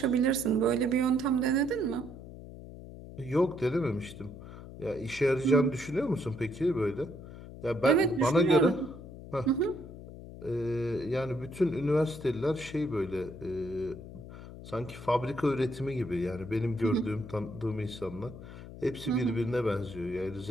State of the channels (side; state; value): left; noise; hum, 14 dB below the sound